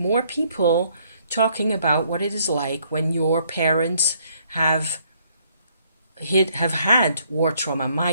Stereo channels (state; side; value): inverted; both; correlation -0.67